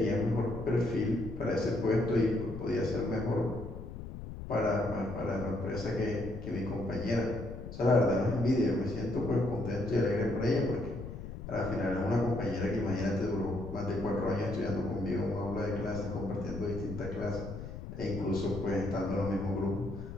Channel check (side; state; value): left; noise; rumble, 9 dB below the sound